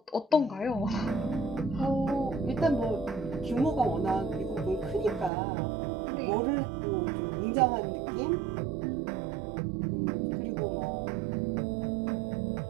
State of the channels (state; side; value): drops out; left; at 5.3 s